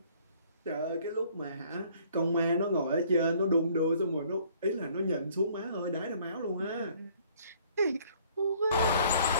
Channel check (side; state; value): both; inverted; correlation -0.59